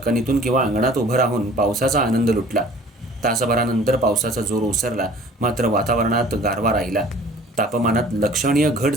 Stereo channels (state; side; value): normal; both; correlation 0.50